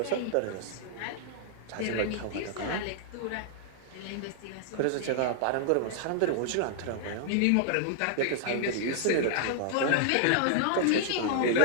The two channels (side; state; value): both; different; correlation -0.01